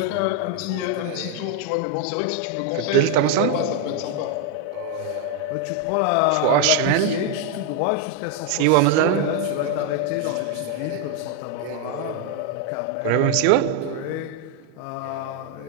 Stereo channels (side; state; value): both; different; correlation 0.01